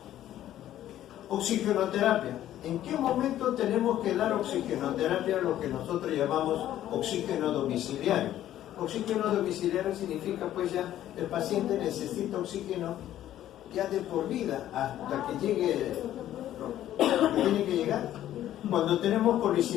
Oxigenoterapia. ¿En qué momento tenemos que dar oxigenoterapia, lo que nosotros llamamos oxígeno domiciliario? Oxígeno domiciliario significa pues ya el paciente necesita oxígeno ya de por vida hasta que llegue lo que tiene que llegar. Cuando tenemos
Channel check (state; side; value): quieter; right; 12.4 dB